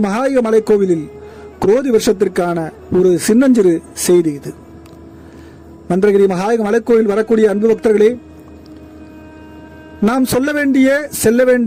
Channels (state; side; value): identical; both; correlation 1.00